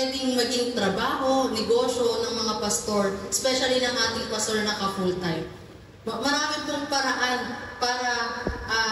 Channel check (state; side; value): identical; both; correlation 1.00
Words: maging trabaho, negosyo ng mga pastor, especially ng ating pastor na ka-full-time. Marami pong paraan para